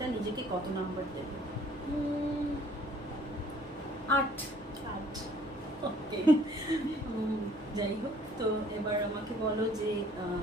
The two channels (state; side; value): normal; both; correlation 0.57